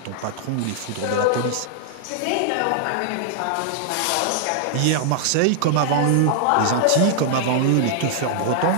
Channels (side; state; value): both; different; correlation -0.01